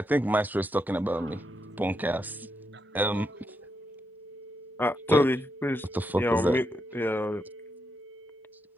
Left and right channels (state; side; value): normal; both; correlation 0.82